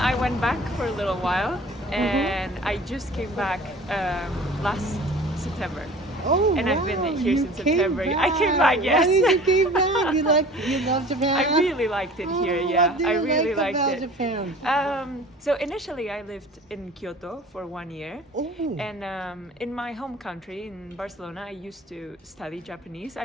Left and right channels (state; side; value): normal; both; correlation 0.44